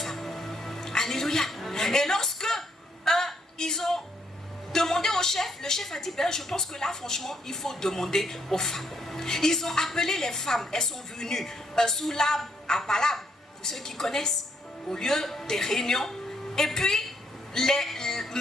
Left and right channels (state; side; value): normal; both; correlation 0.73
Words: Alléluia. Et lorsque ils ont demandé au chef, le chef a dit, ben, je pense que là, franchement, il faut demander aux femmes. Ils ont appelé les femmes, elles sont venues sous l'arbre à Palab, pour ceux qui connaissent, au lieu des réunions. Et puis,